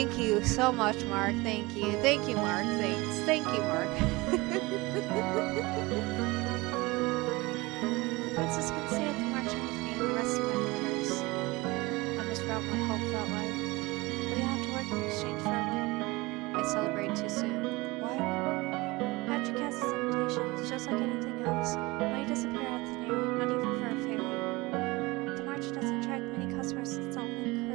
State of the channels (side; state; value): left; quieter; 22.7 dB